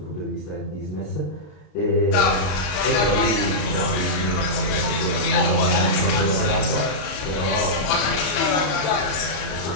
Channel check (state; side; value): late; right; 33 ms